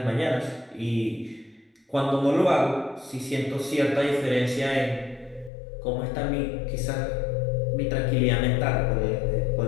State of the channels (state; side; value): drops out; right; at 5.5 s